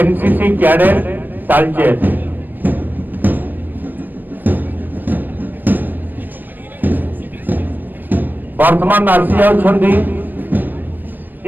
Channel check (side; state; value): left; late; 0.091 ms